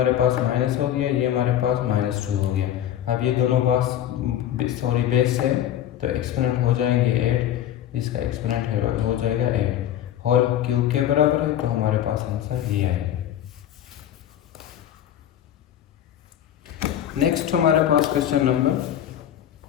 पास माइनस हो गया, ये हमारे पास -2 हो गया। अब ये दोनों बेस है तो एक्सपोनेंट हो जाएंगे 8, इसका एक्सपोनेंट हो जाएगा 8, होल क्यूब के बराबर है, तो हमारे पास आंसर ये आएगा। नेक्स्ट हमारे पास क्वेश्चन नंबर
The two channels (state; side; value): quieter; right; 11.1 dB